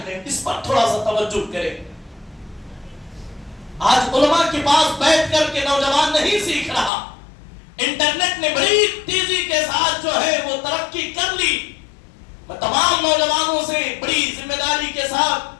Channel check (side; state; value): right; drops out; at 6.9 s